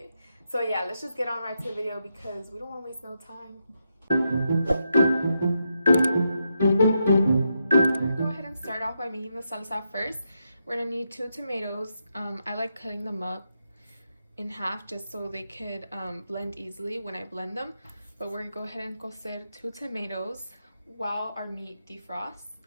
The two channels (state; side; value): inverted; both; correlation -0.83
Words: So yeah, let's just get on right to the video because we don't want to waste no time. We're going to go ahead and start off by making the salsa first. We're gonna need 2 tomatoes. I like cutting them up in half just so they could blend easily when I blend them. But we're gonna go ahead and cocer 2 tomatoes while our meat defrosts.